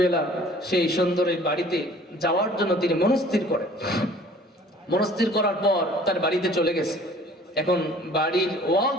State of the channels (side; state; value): both; normal; correlation 0.51